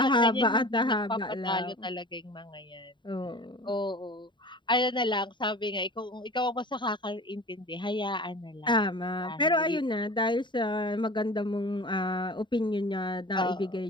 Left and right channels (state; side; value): late; right; 0.23 ms